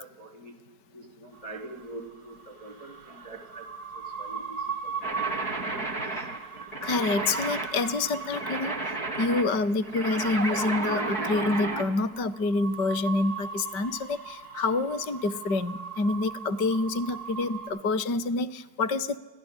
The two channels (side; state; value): right; late; 4.7 ms